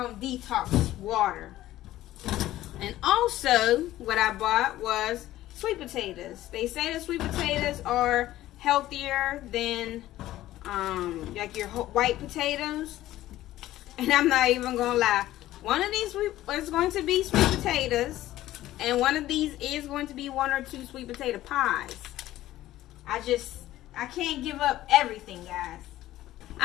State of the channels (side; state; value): right; quieter; 14.8 dB